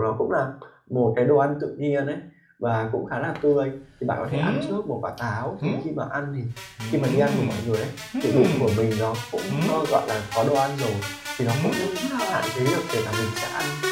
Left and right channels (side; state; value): both; identical; correlation 1.00